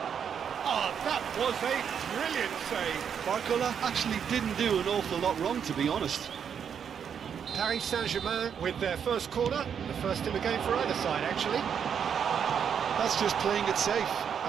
Oh, that was a brilliant save. Barcola actually didn't do an awful lot wrong, to be honest. Paris Saint-Germain with their first corner, the first in the game for either side, actually. That's just playing it safe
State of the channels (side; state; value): left; quieter; 7.7 dB